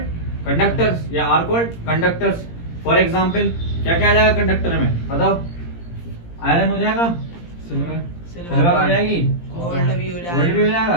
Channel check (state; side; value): late; right; 17 ms